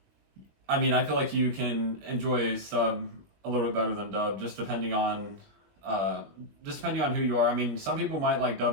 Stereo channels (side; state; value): left; late; 21 ms